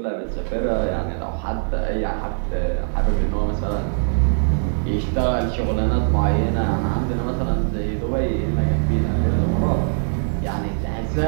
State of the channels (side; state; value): left; silent; 64 dB below the other